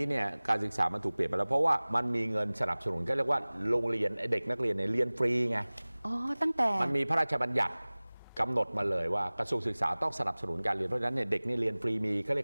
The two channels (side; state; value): both; inverted; correlation -1.00